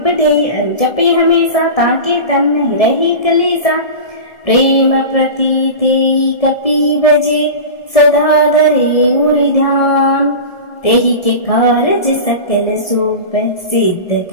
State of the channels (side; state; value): right; late; 1.7 ms